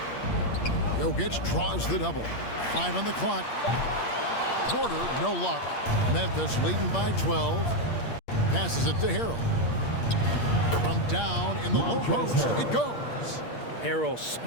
Jokic draws the double. 5 on the clock. Porter, no luck. Memphis leading by 12. Passes it to Harrell. From down in the low post, it goes. Harrell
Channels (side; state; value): right; late; 8.6 ms